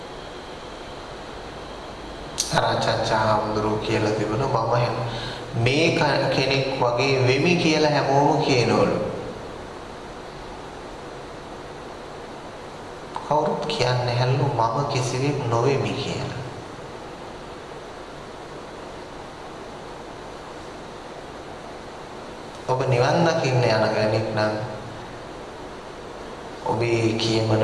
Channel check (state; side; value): identical; both; correlation 1.00